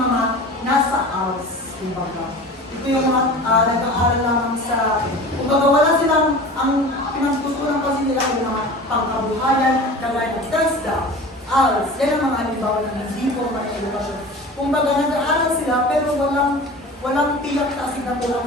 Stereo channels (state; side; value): normal; both; correlation 0.37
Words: nasa ALS, kumbaga. Ito yung mga nag-aaral lamang sa, kumbaga wala silang, ang pinagtutunan kasi nila yung mga pangkabuhayan, kagaya ng TESDA, ALS, yan ang mga halimbawa ng hindi formal na edukasyon. Kumbaga nag-aaral sila pero walang tiyak na asignatura